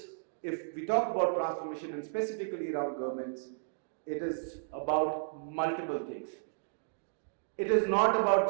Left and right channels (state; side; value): silent; left; digital silence